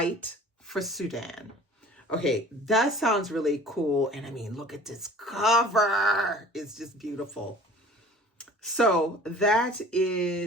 for Sudan. Okay, that sounds really cool. And I mean, look at this cover. It's just beautiful. So that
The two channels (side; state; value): both; normal; correlation 0.46